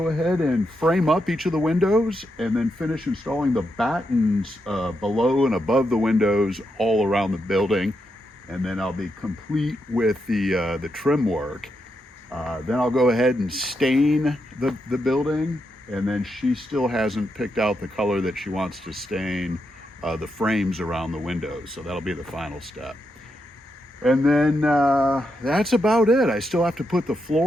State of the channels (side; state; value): both; normal; correlation 0.83